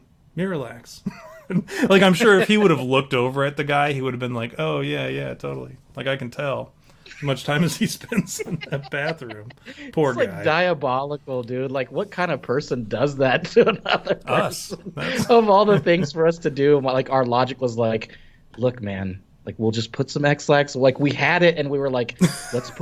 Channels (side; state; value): both; identical; correlation 1.00